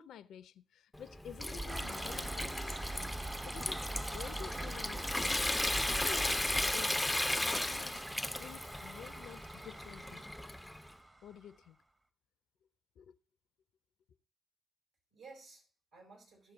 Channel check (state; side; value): normal; both; correlation 0.97